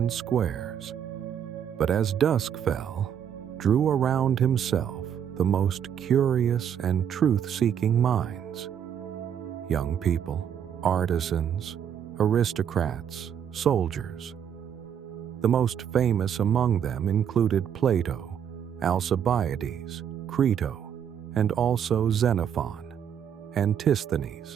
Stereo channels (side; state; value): left; quieter; 8.7 dB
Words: squares, but as dusk fell, drew around himself the most curious and truth-seeking minds. Young people, artisans, aristocrats, soldiers. The most famous among them included Plato, Alcibiades, Crito, and also Xenophon,